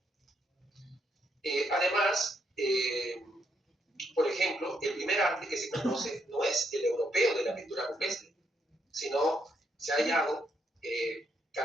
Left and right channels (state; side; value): normal; both; correlation 0.76